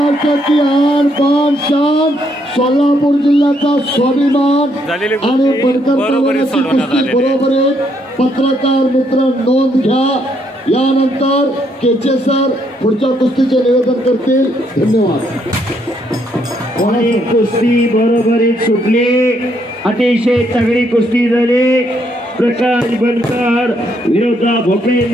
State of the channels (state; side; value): normal; both; correlation 0.73